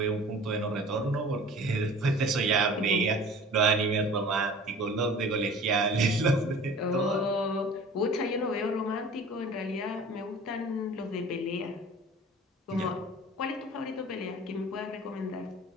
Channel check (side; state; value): both; normal; correlation 0.44